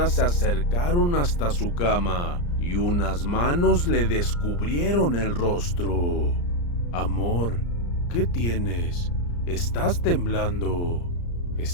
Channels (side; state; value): right; late; 34 ms